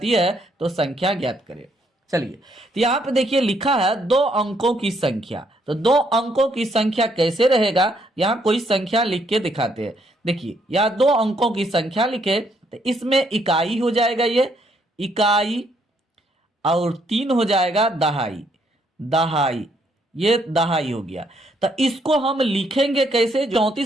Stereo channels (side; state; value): both; normal; correlation 0.72